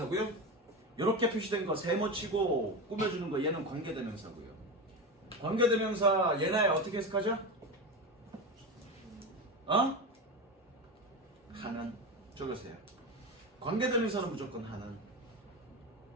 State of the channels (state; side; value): normal; both; correlation 0.20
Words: 이렇게 표시된 거 세모치고 꾸며주는 거 얘는 관계대명사고요. 관계대명사 얘나야 어떻게 해석하죠? 하는. 적으세요. 관계대명사는 무조건 하는.